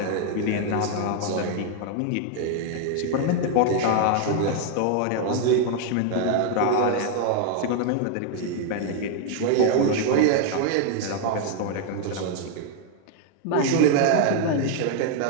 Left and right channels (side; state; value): both; different; correlation 0.00